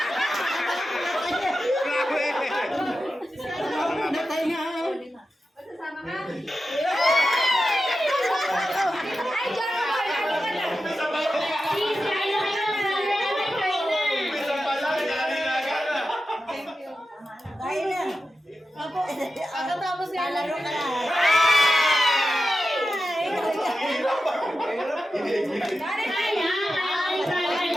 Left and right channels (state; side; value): normal; both; correlation 0.92